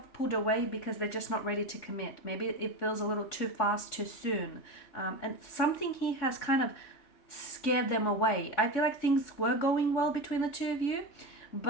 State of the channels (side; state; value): right; late; 3.6 ms